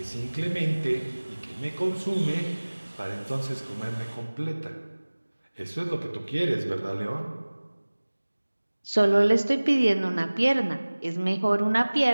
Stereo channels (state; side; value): inverted; both; correlation -1.00